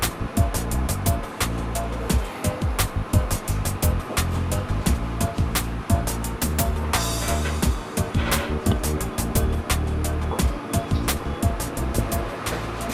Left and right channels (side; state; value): both; identical; correlation 1.00